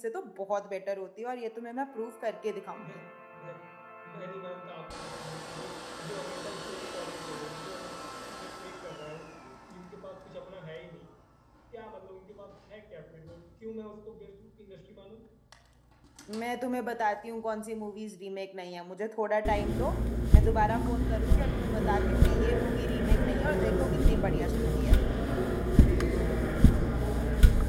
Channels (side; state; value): both; identical; correlation 1.00